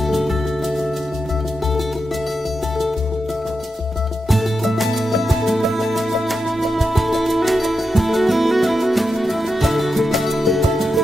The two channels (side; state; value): both; normal; correlation 0.87